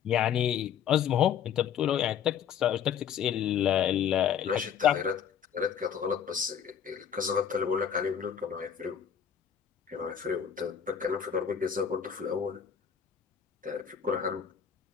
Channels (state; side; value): quieter; right; 8.4 dB